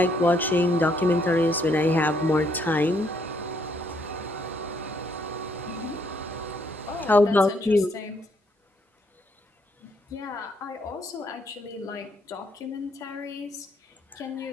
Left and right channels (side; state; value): both; normal; correlation 0.71